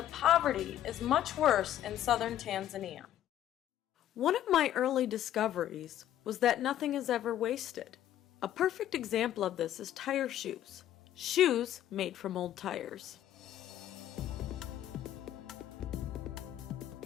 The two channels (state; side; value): quieter; right; 11.9 dB